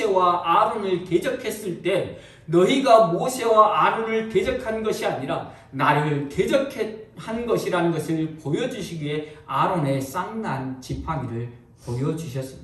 아론을 대적했을 때 너희가 모세와 아론을 대적한 것이 아니라 나를 대적한 것이라는 것을 보여주시기 위해 아론의 쌍난 지팡이를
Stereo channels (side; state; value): both; identical; correlation 1.00